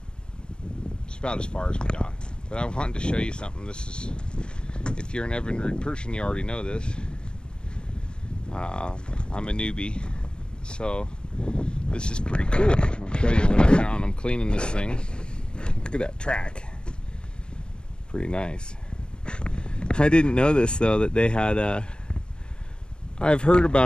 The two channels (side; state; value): right; late; 0.050 ms